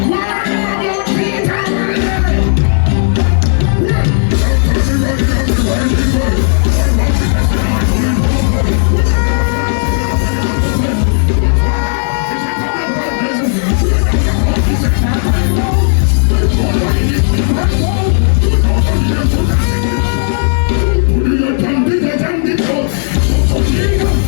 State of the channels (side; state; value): right; silent; digital silence